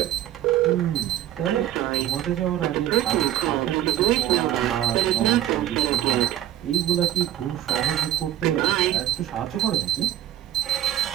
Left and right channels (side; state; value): left; quieter; 12.4 dB